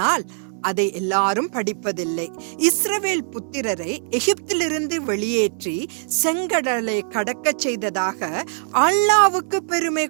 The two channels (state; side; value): silent; left; digital silence